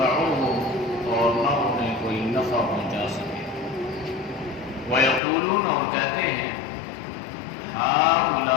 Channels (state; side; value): drops out; right; at 5.2 s